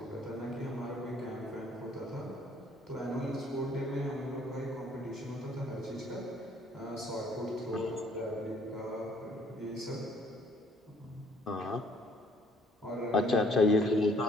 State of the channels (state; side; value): normal; both; correlation 0.61